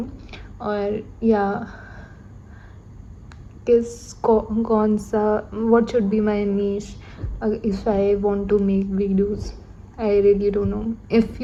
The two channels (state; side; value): identical; both; correlation 1.00